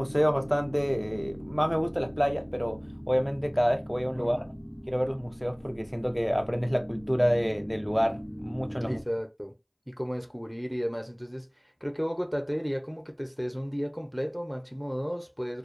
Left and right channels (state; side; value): identical; both; correlation 1.00